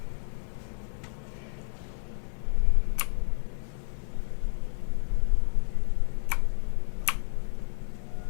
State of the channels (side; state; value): right; silent; 58 dB below the other